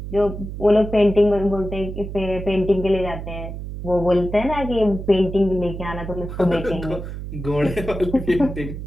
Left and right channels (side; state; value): right; noise; hum, 8 dB below the sound